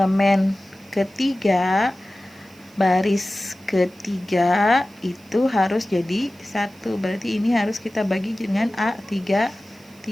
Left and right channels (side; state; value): right; noise; hiss, 28 dB below the sound